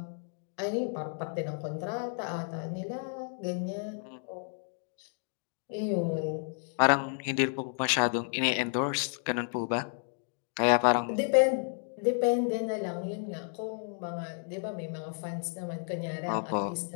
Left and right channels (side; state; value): right; silent; 56 dB below the other